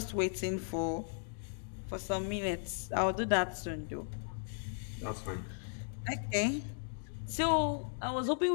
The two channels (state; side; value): silent; right; digital silence